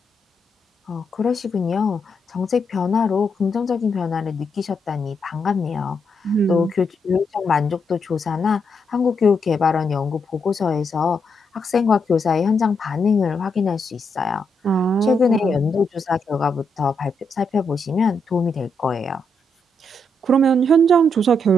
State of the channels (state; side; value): normal; both; correlation 0.79